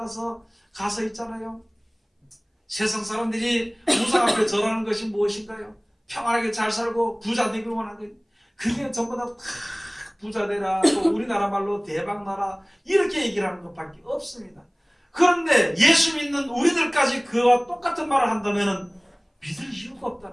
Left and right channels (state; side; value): identical; both; correlation 1.00